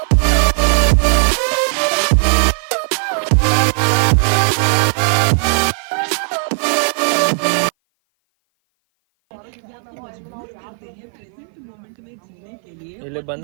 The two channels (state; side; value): silent; left; 56 dB below the other